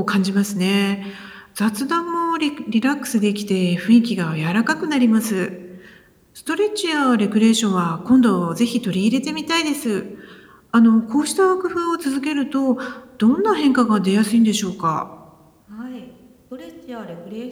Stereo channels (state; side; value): identical; both; correlation 1.00